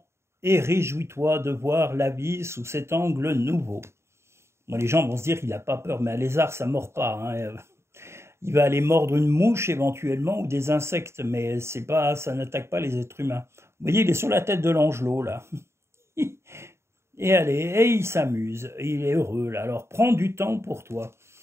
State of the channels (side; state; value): left; late; 0.13 ms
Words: et réjouis-toi de voir la vie sous cet angle nouveau. Bon, les gens vont se dire qu'il n'a pas peur, mais un lézard, ça ne mord pas. Hein. Il va aller mordre une mouche éventuellement ou des insectes, mais c'est pas, ça n'attaque pas les êtres humains. Vous voyez, il est sur la tête de l'angelot, là. Et allez, et il s'amuse, il est heureux, là. Alors prends du temps pour toi.